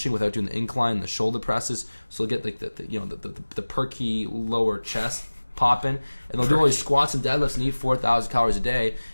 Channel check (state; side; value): inverted; both; correlation -1.00